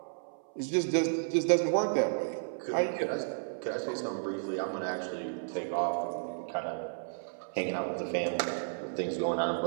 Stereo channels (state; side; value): silent; left; 56 dB below the other